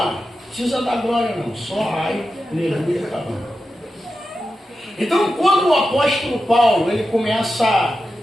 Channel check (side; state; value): both; normal; correlation 0.91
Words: Não precisa dar glória não. Só ai, aleluia, tá bom. Então quando o apóstolo Paulo ele começa a